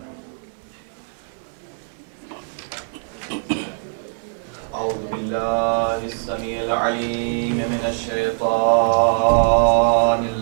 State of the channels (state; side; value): silent; left; digital silence